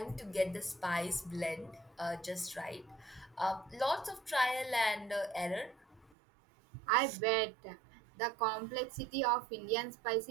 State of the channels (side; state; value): left; drops out; at 6.1 s